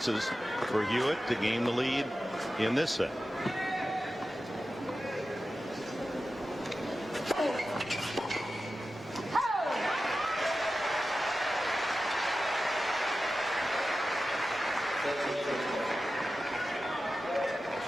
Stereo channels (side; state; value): both; normal; correlation 0.93